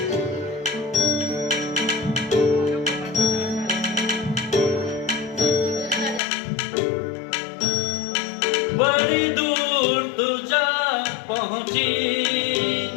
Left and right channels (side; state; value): right; drops out; at 6.2 s